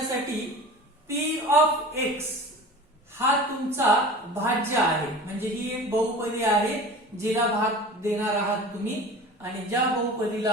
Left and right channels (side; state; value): both; normal; correlation 0.38